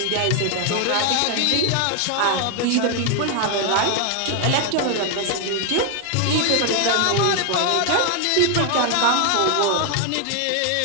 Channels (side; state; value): both; different; correlation 0.00